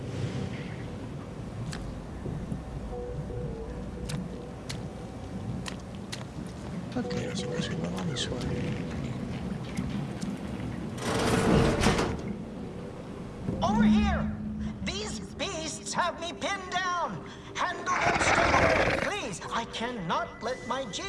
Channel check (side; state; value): both; identical; correlation 1.00